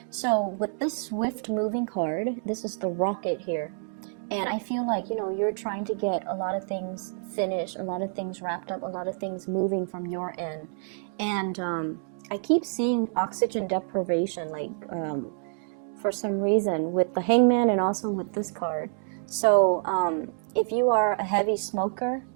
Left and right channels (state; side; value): silent; left; digital silence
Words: So with this swift moving card, this is the rocket here. And I feel like, you're trying to get a lot of things finished, a lot of things wrapped up, a lot of things moving from your end. And I keep seeing oxygen deprivation, like for some reason, with the Hangman and also with this card. So if you are a heavy smoker,